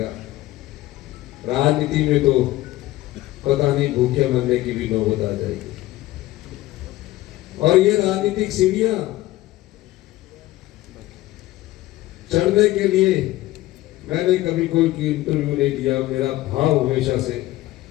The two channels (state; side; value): quieter; right; 16.7 dB